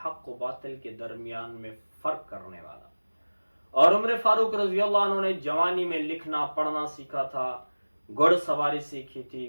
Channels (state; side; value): inverted; both; correlation -1.00